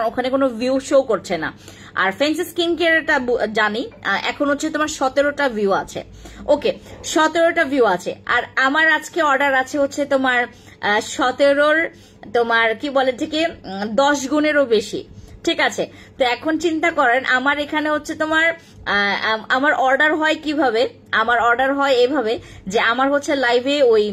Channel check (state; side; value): identical; both; correlation 1.00